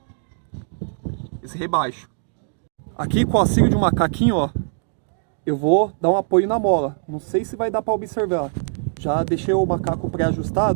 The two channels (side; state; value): left; silent; digital silence